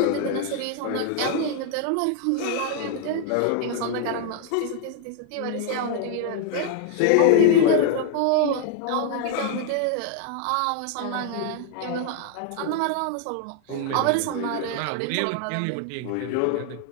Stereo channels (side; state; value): both; different; correlation 0.00